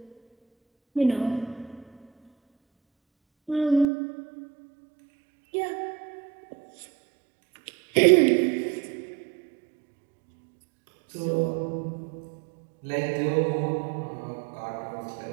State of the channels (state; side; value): drops out; left; at 3.9 s